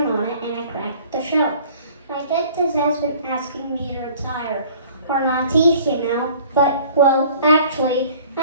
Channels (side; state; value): both; inverted; correlation -0.51